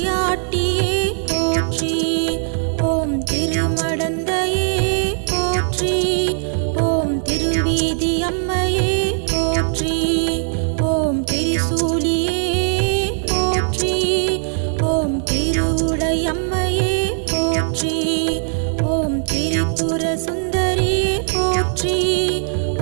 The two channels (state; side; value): silent; left; 58 dB below the other